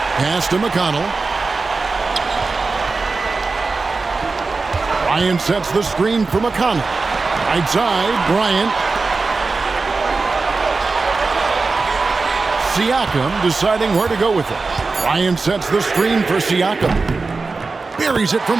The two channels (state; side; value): quieter; left; 4.0 dB